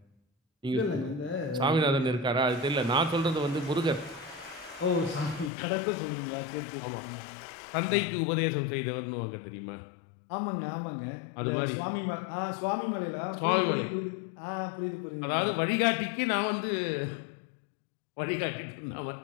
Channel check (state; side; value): drops out; right; at 5.5 s